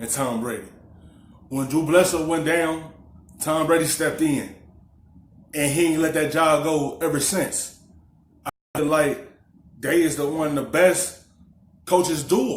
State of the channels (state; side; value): identical; both; correlation 1.00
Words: Tom Brady. When Drew Bledsoe went down, Tom Brady stepped in. And he ain't let that job go ever since. I feel like they is one of the best coaches duo